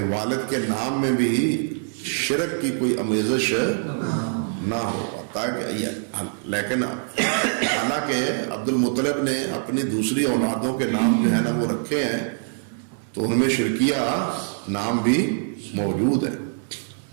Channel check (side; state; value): left; silent; 63 dB below the other